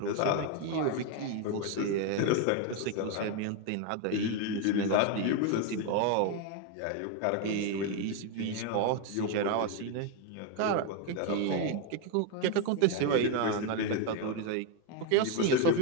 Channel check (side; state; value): both; different; correlation 0.01